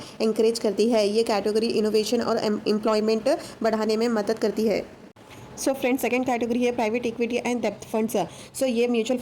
एंकरेज करती है। ये कैटेगरी इनोवेशन और एम्प्लॉयमेंट बढ़ाने में मदद करती है। सो फ्रेंड्स, सेकंड कैटेगरी है प्राइवेट इक्विटी एंड डेप्थ फंड्स। सो ये म्यूचुअल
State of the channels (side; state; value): both; identical; correlation 1.00